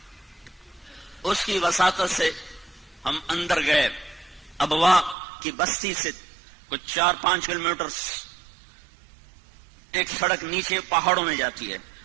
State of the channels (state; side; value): drops out; left; at 5.2 s